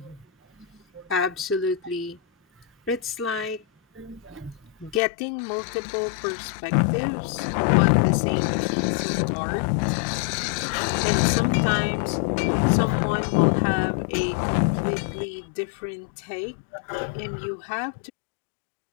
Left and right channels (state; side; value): drops out; right; at 5.0 s